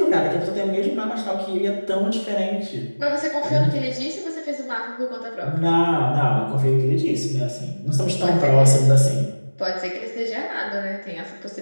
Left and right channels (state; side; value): inverted; both; correlation -1.00